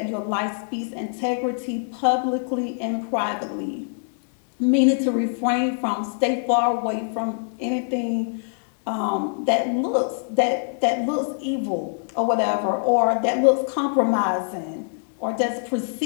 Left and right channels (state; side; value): silent; right; digital silence